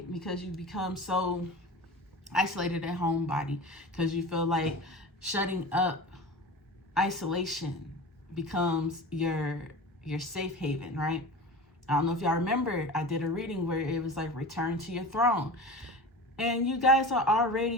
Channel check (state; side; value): normal; both; correlation 0.33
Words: Because you become so isolated at home body, because you feel like shutting up, isolation becomes your safe haven, right? I don't know if y'all remember, I did a reading where it was like return to your throne, and you guys are